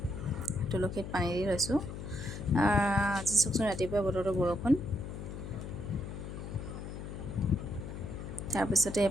তুলসীত পানী দি লৈছোঁ। আজি চাওকচোন ৰাতিপুৱা বতৰটো বৰষুণ। তাৰপিছতে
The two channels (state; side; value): noise; left; hum, 8 dB below the sound